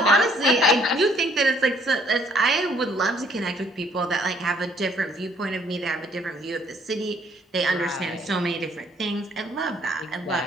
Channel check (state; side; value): normal; both; correlation 0.64